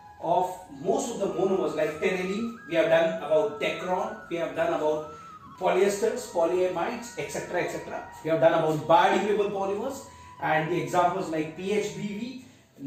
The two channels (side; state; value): both; identical; correlation 1.00